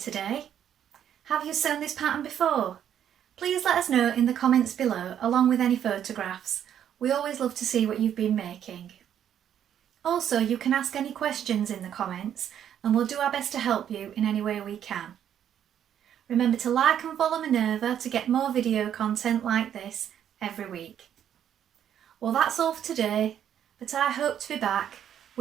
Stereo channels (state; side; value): quieter; left; 9.7 dB